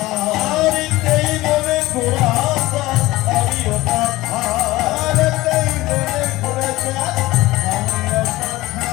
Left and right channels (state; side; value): quieter; right; 18.6 dB